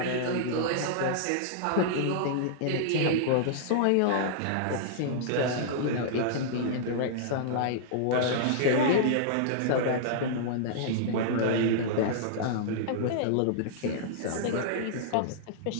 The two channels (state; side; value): different; both; correlation -0.02